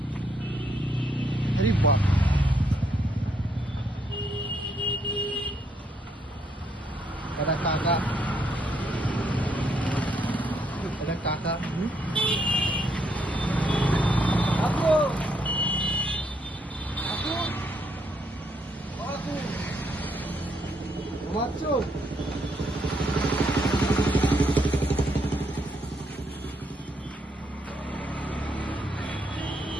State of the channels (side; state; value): both; normal; correlation 0.74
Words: আরে বাহ, এটা কাকা, এটা কাকা। কাকু কাকু কাকু ঘুমাচ্ছ?